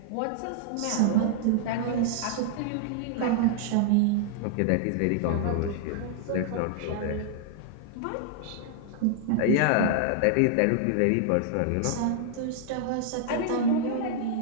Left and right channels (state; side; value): different; both; correlation -0.01